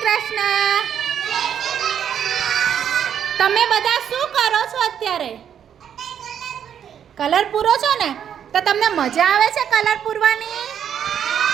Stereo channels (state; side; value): quieter; left; 8.8 dB